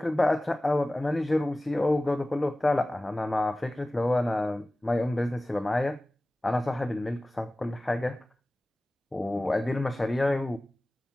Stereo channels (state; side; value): normal; both; correlation 0.98